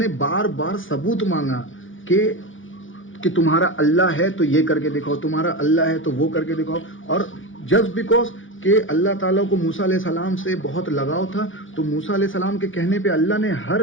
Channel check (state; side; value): late; right; 0.57 ms